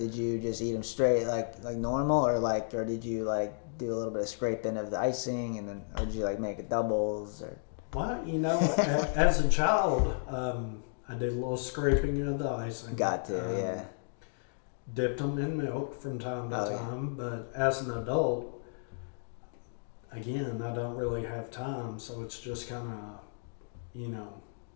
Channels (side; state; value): right; silent; digital silence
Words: you just eat them straight like normal, or did you do a little bit of scraping of the icing, or did you make it doubles or? Well, as a child, I did a little scraping of the icing. Got to, yeah. Dipped them in milk from time to time, but as an adult, again, I don't really have time, so it's just kind of,